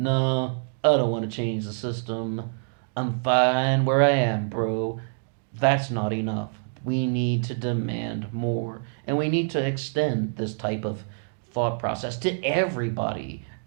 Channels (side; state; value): left; silent; digital silence